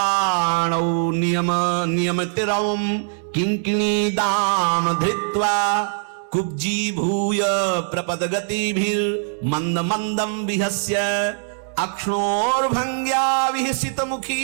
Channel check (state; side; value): silent; left; 64 dB below the other